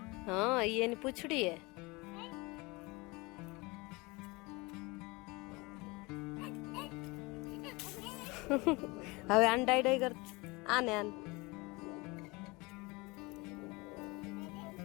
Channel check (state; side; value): quieter; right; 25.0 dB